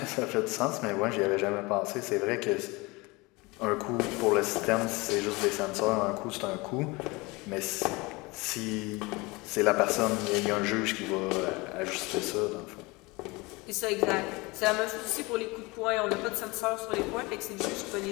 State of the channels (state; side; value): quieter; right; 24.4 dB